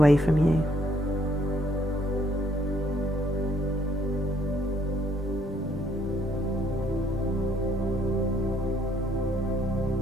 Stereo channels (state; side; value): normal; both; correlation 0.67